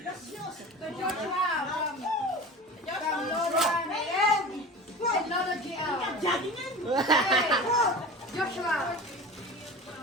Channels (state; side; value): normal; both; correlation 0.34